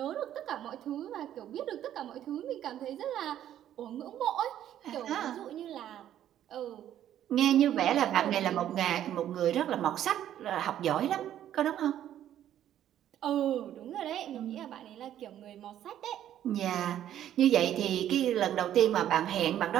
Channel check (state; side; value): quieter; left; 11.3 dB